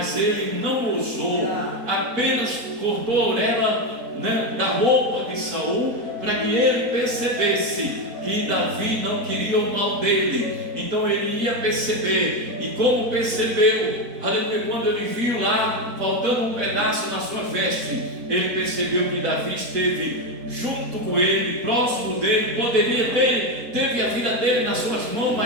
ele não ousou, apenas cortou a orelha, da roupa de Saul, para que ele percebesse que Davi não queria o mal dele. Então ele ia perceber, e como percebeu, aleluia, quando ele viu lá faltando um pedaço na sua veste, ele percebeu que Davi esteve junto com ele, próximo dele, poderia ter, teve a vida dele nas suas mãos,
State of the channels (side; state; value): left; late; 4.3 ms